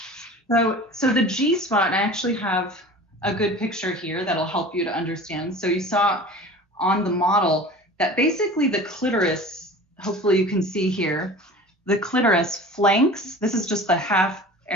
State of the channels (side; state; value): both; normal; correlation 0.39